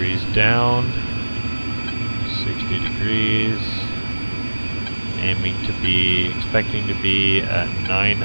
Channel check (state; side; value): inverted; both; correlation -1.00